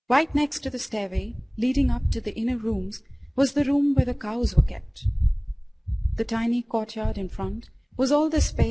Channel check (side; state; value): both; identical; correlation 1.00